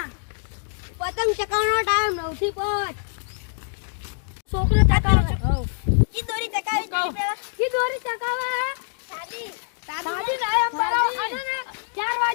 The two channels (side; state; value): right; silent; digital silence